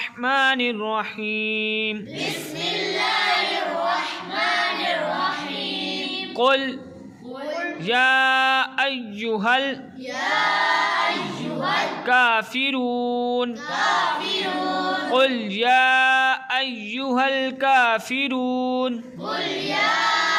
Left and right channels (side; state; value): both; identical; correlation 1.00